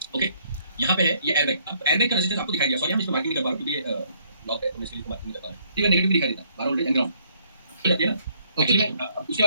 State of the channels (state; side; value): inverted; both; correlation -0.66